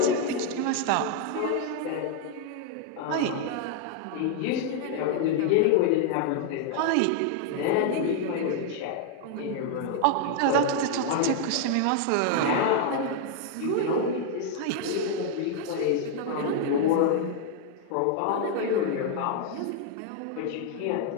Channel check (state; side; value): different; both; correlation 0.00